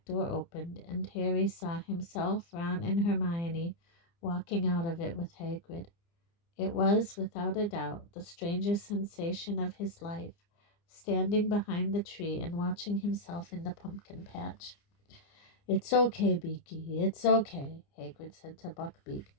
door opened, and Harry saw himself, Ron, and Hermione walking out of it with Hagrid. It was, without a doubt, the strangest sensation of his life, standing behind the tree and watching himself in the pumpkin patch. "It's okay, Beaky, it's okay," Hagrid said to Buckbeak.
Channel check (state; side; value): late; right; 29 ms